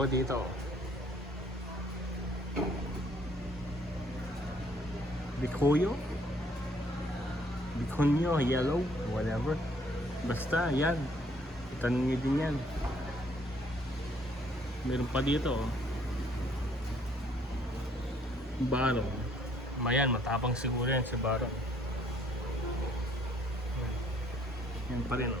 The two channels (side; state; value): both; normal; correlation 0.64